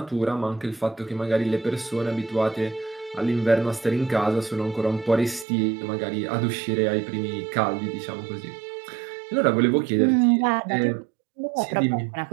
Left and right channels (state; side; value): drops out; left; at 5.5 s